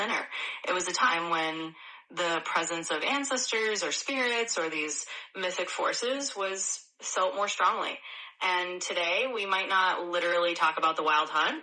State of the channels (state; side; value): identical; both; correlation 1.00